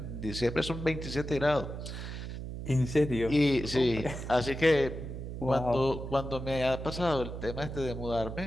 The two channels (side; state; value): right; noise; hum, 7 dB below the sound